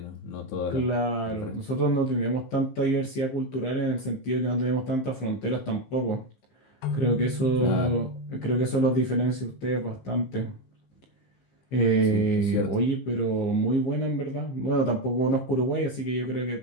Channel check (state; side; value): late; right; 15 ms